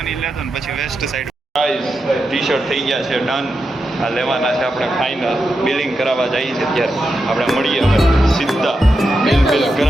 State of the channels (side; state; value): both; normal; correlation 0.87